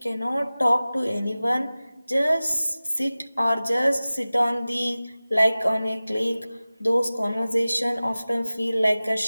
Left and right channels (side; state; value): both; inverted; correlation -0.97